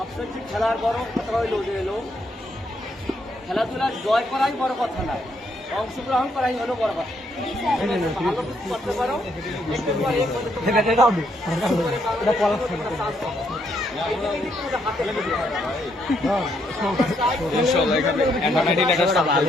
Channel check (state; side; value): normal; both; correlation 0.74